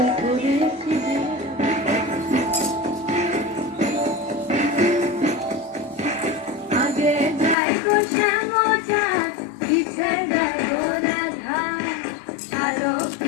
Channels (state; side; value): drops out; right; at 7.6 s